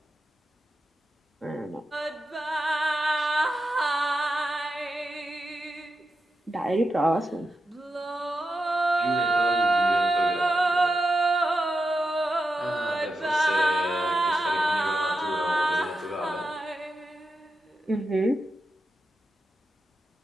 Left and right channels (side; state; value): both; normal; correlation 0.88